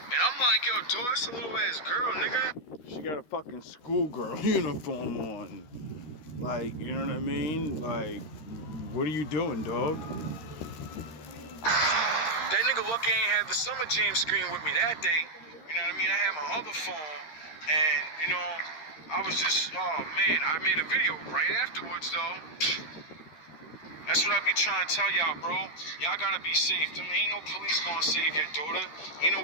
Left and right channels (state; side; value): late; right; 13 ms